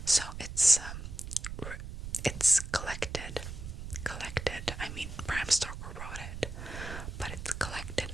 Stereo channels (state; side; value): noise; right; rumble, 8 dB below the sound